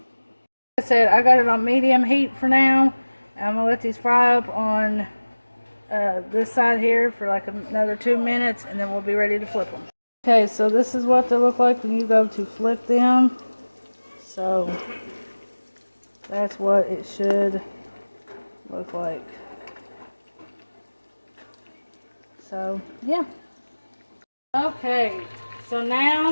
like I said, I got it on medium heat for now. I'm going to let these fry up on this side here for like another 2 minutes, and then we'll be ready to flip them. Okay, so this is what they look like when you go to flip them. So, that's what it should look like. So, yeah. Okay, so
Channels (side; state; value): both; inverted; correlation -1.00